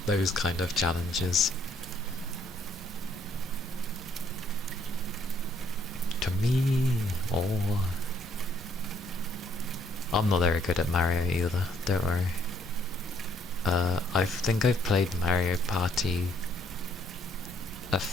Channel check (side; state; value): both; normal; correlation 0.67